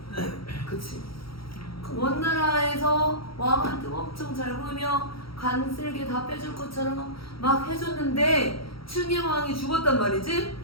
돼. 그치? 그 원나라에서 왕한테 엄청 잘 보이며 간쓸게 다 빼줄 것처럼 막 해줬는데 충의왕이 죽었단 말이지?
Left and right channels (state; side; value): late; right; 0.75 ms